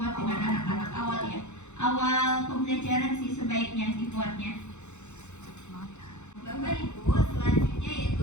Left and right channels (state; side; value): late; right; 0.83 ms